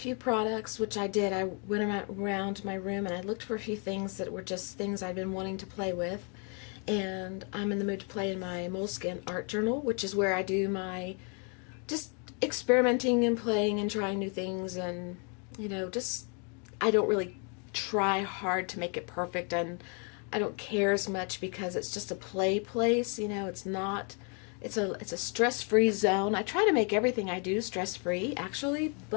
products, which I did. I went around my room and I looked for a few things that were just things I'd been wanting to play with, and I'm in the mood to play in my Moleskin art journal, which is where I do my just experimenting and playing and trying new things, and just I don't really try hard to make it perfect, and I don't care as much because it's just a play place. It's not, it's a stress-free zone. I try to make everything I do stress-free actually,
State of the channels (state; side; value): quieter; right; 37.4 dB